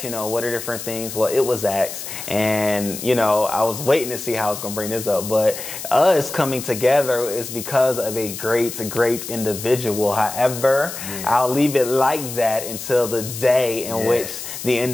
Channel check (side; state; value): left; noise; hiss, 9 dB below the sound